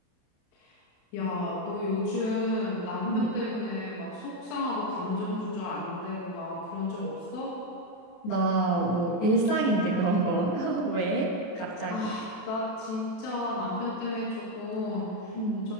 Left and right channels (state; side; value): late; right; 27 ms